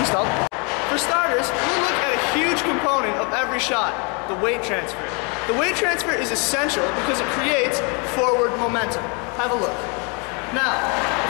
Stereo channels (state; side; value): quieter; right; 33.3 dB